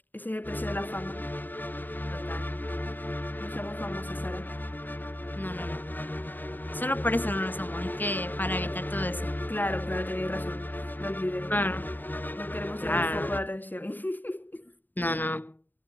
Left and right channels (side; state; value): right; late; 0.090 ms